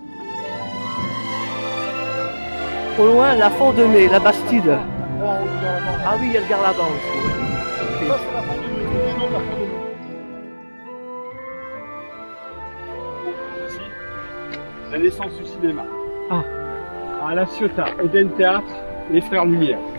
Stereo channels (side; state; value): both; inverted; correlation -1.00